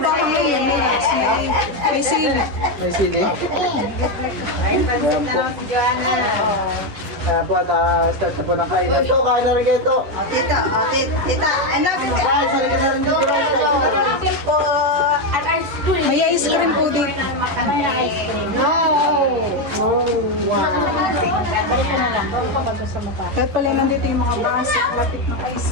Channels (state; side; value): late; left; 11 ms